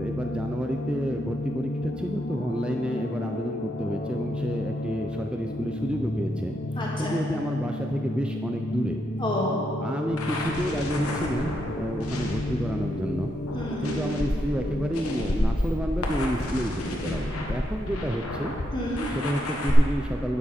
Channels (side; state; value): both; normal; correlation 0.81